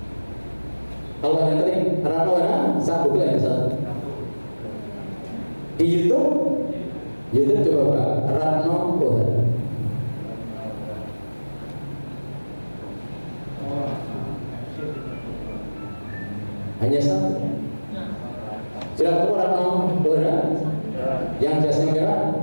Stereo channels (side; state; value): both; inverted; correlation -1.00